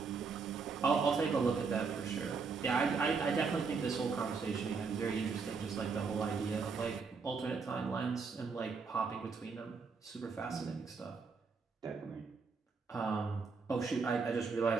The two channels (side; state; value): left; quieter; 5.0 dB